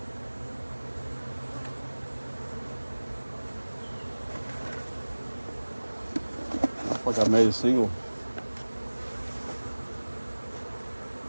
Looks like I made a single.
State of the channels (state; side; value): inverted; both; correlation -1.00